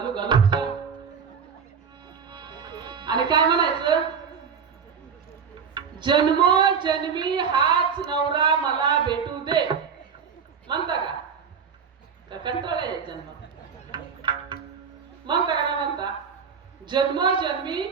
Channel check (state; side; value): quieter; left; 6.5 dB